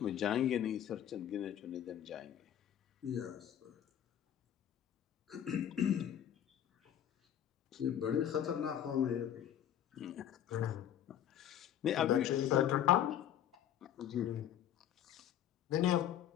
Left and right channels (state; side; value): quieter; right; 10.4 dB